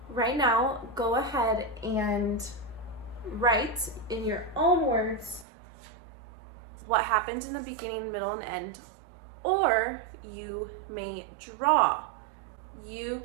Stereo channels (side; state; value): left; drops out; at 5.5 s